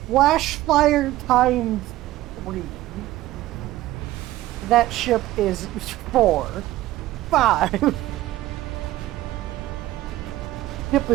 Flash fire times 3. That ship is 4. 5. Ship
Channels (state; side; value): quieter; left; 15.9 dB